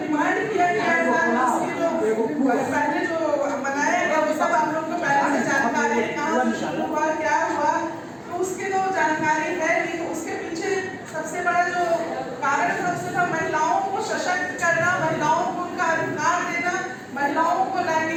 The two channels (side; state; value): both; identical; correlation 1.00